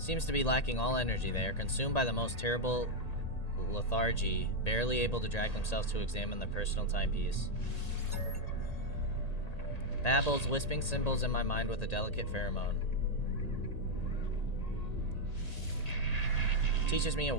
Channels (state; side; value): late; right; 1.8 ms